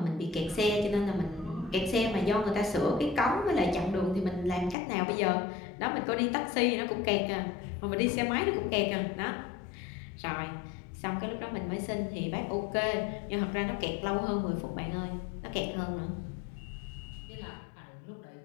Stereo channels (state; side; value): drops out; right; at 4.8 s